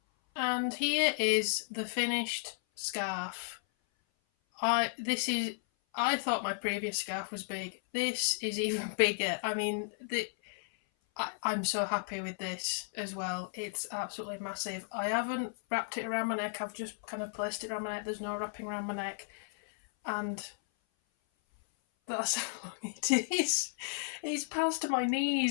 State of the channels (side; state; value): right; silent; 55 dB below the other